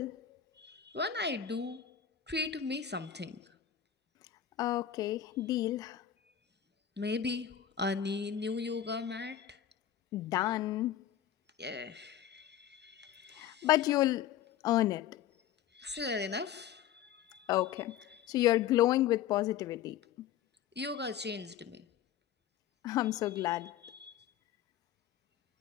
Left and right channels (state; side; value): quieter; right; 10.1 dB